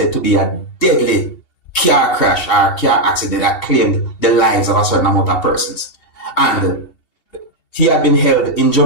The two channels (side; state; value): right; late; 2.8 ms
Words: to be a deadly car crash or car accident that claimed the lives of a certain amount of persons. And he had been held in